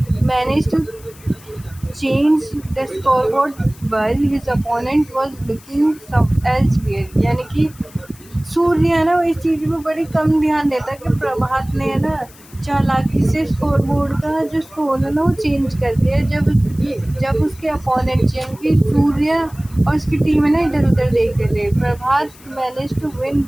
managed to change the scoreboard while his opponent was looking some elsewhere। यानी कि सूर्य है ना, वो इस चीज़ पे बड़ी कम ध्यान देता है कि प्रभात ने है ना चालाकी से स्कोर बोर्ड का जो स्कोर है ना वो चेंज कर दिया। जब उसके अपोनेंट यानी कि सूर्य और उसकी टीम है ना इधर उधर देख रहे थे, Prabhat manage to win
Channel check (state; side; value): noise; left; hiss, 23 dB below the sound